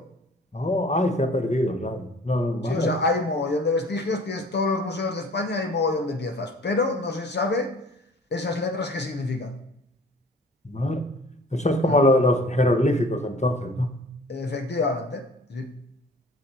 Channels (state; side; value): normal; both; correlation 0.49